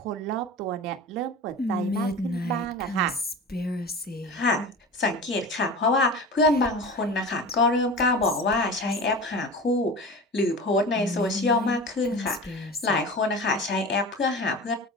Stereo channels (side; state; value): both; normal; correlation 0.32